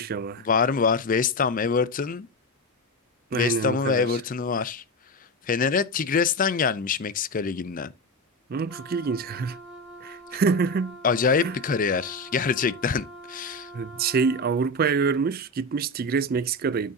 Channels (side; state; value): both; normal; correlation 0.17